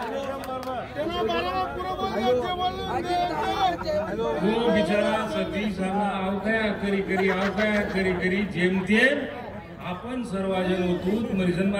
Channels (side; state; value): both; identical; correlation 1.00